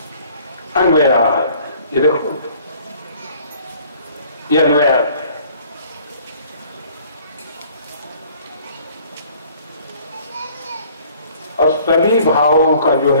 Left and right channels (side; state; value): both; inverted; correlation -0.55